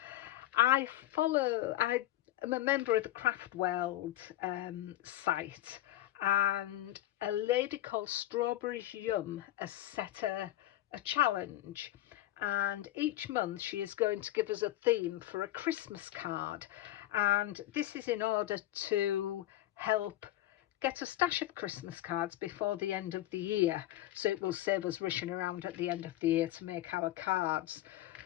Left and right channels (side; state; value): right; quieter; 14.8 dB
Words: I am a member of the Craft World site, and a lady called Strawberries Yum has set a challenge, and each month she is going to give us a theme for a Christmas card, and this is in order to help get a stash of Christmas cards before the end of the year, so it will save us rushing around at the end of the year to make our cards.